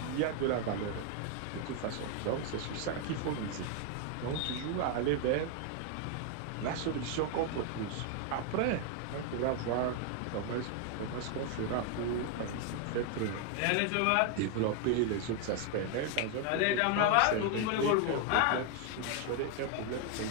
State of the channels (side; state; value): both; different; correlation 0.01